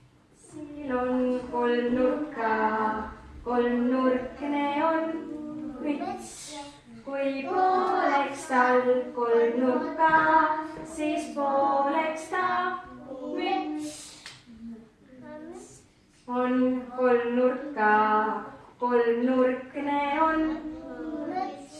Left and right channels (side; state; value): both; identical; correlation 1.00